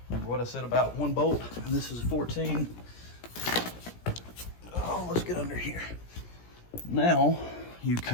remember what I said about one bolt, and this is 14. Oh, let's get under here. Now you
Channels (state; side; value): late; right; 17 ms